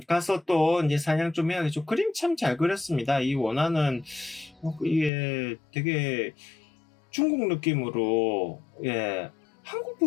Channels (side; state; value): right; drops out; at 5.1 s